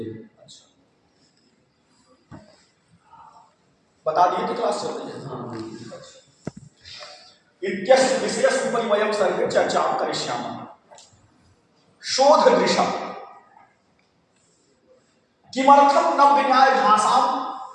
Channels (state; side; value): identical; both; correlation 1.00